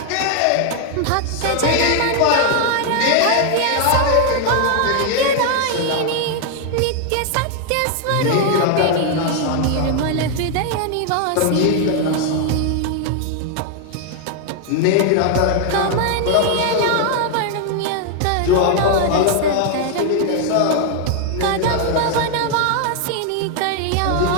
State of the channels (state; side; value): different; both; correlation 0.00